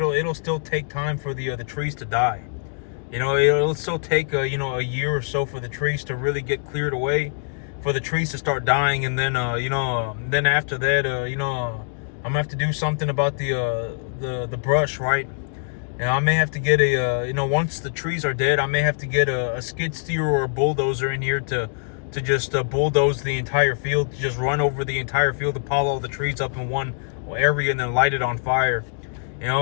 still take time for the trees to die. You know, it'll still take you know, a year or so for the trees to really get cleared away, for the trees to start dying, and then you know, then after that, you know, I'm gonna have to do something about the brush, right? And I may have to get a you know, once the trees are dead, I may have to get a skid steer or a bulldozer in here to just bulldoze the entire field, to just run over the entire field, to pile all the trees up in one area and then light it on fire. You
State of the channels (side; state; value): right; silent; digital silence